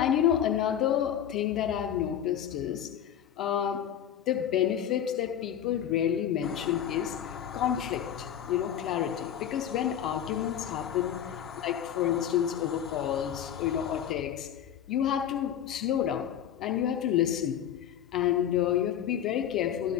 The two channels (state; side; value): quieter; right; 9.9 dB